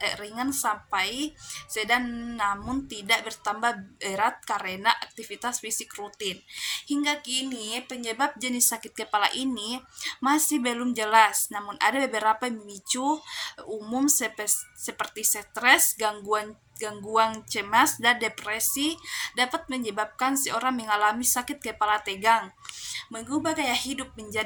sampai sedang, namun tidak bertambah berat karena aktivitas fisik rutin. Hingga kini penyebab jenis sakit kepala ini masih belum jelas, namun ada beberapa pemicu umum seperti stres, gangguan cemas, dan depresi dapat menyebabkan seorang mengalami sakit kepala tegang. Mengubah gaya hidup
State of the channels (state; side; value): identical; both; correlation 1.00